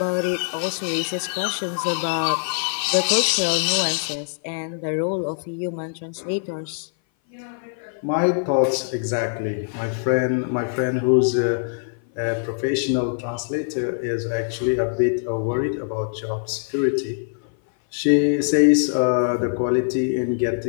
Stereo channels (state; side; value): silent; right; 57 dB below the other